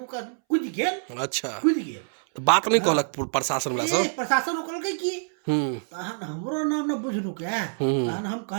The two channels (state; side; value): silent; left; 61 dB below the other